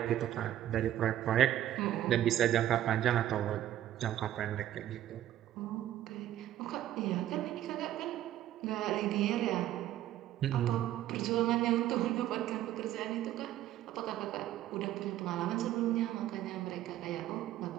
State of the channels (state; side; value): quieter; left; 12.7 dB